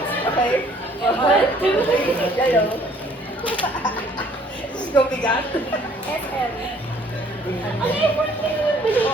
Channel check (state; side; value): normal; both; correlation 0.59